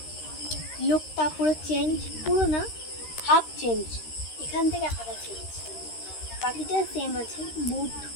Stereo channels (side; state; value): right; late; 13 ms